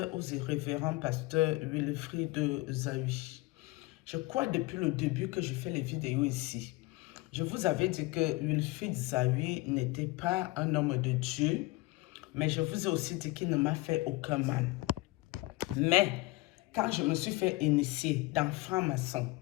aux révérend pasteur Wilfrid Zawi. Je crois depuis le début que je fais les vidéos ici. Je vous avais dit que Wilfrid Zawi n'était pas un homme de Dieu, mais je vous ai aussi dit qu'il ne m'a fait aucun mal. Mais quand je me suis fait initier dans franc-maçon,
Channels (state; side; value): quieter; right; 21.1 dB